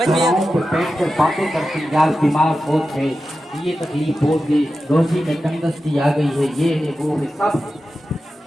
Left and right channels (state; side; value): normal; both; correlation 0.92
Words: بیٹھ کر باتیں کرتے یار بیمار بہت ہے، یہ تکلیف بہت ہے، روزی میں تنگستی آ گئی ہے، یہ ہے وہ ہے، سب ہے،